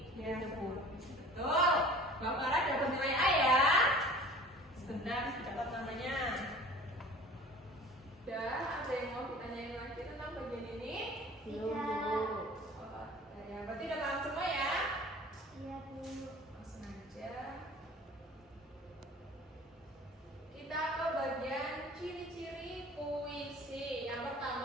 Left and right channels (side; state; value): both; normal; correlation 0.44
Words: Ya, Gitu, Bu. betul. Mbak Farah dapat nilai A ya. Sebentar, dapat namanya. Udah, ada yang mau ditanyain lagi tentang bagian ini? Belum, Tidak. Bu. Oh, ya, berarti udah paham semua ya? Iya, Bu. Langsung aja. Kita ke bagian ciri-ciri puisi. Yang